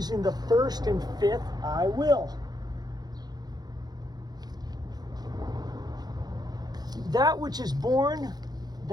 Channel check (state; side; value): late; left; 0.19 ms